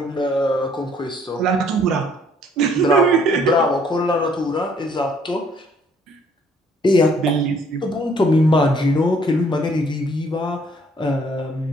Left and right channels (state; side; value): normal; both; correlation 0.62